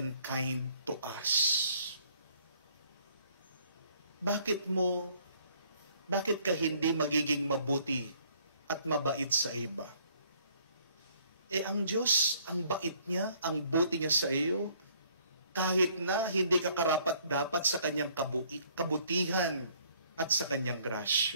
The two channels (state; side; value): inverted; both; correlation -0.63